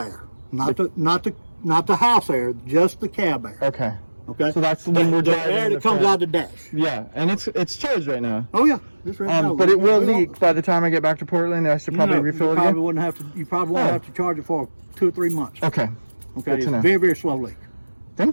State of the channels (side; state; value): both; inverted; correlation -1.00